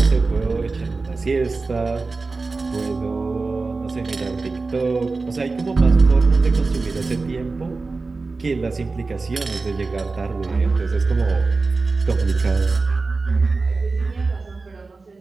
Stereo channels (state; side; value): quieter; left; 3.9 dB